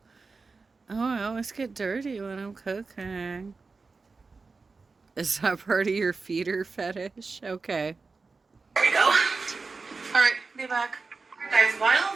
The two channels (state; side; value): quieter; left; 4.2 dB